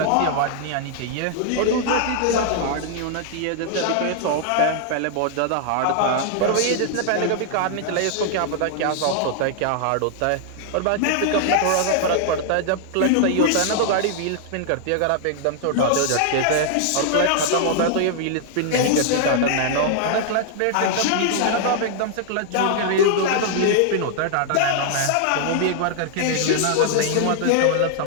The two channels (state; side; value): different; both; correlation -0.01